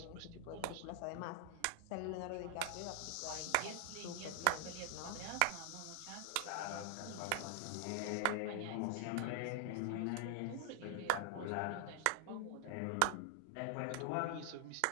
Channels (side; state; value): both; different; correlation 0.00